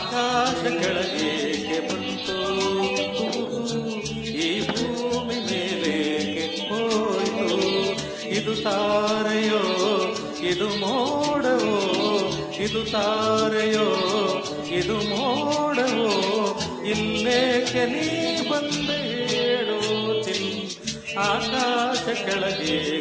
ಕೆಳಗೆ ಬಂತು, ಈ ಭೂಮಿ ಮೇಲೇಕೆ ಹೋಯ್ತು? ಇದು ತಾರೆಯೋ, ಇದು ಮೋಡವೋ, ಇದು ತಾರೆಯೋ, ಇದು ಮೋಡವೋ, ಇಲ್ಲೇಕೆ ನೀ ಬಂದೆ ಹೇಳು ಚಿನ್? ಆಕಾಶ ಕೆಳಗೆ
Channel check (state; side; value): identical; both; correlation 1.00